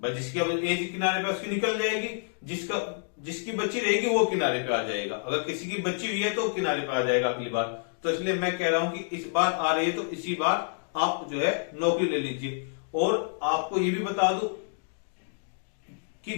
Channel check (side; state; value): right; silent; digital silence